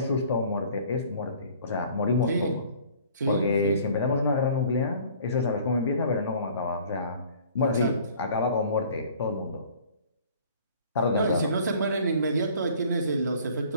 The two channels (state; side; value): inverted; both; correlation -0.52